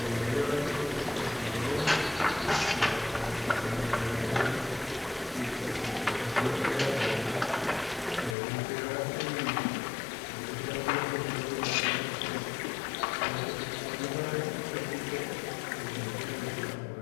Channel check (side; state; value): right; drops out; at 8.3 s